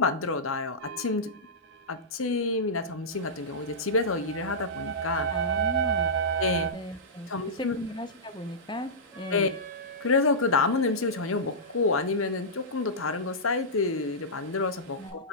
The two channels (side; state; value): both; normal; correlation -0.15